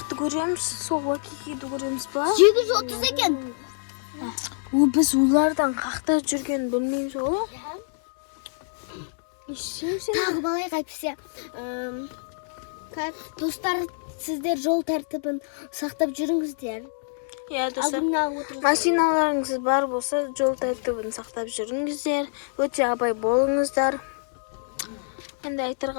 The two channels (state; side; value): silent; right; digital silence